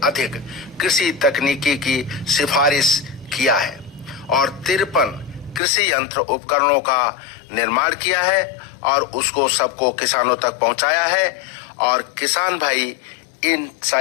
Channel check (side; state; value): right; drops out; at 5.6 s